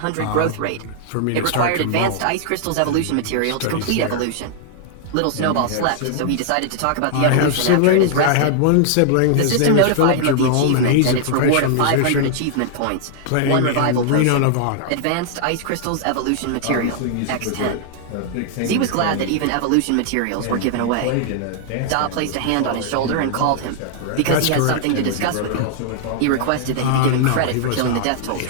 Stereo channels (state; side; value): different; both; correlation -0.01